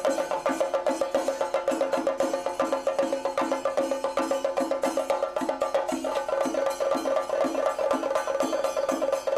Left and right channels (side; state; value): both; identical; correlation 1.00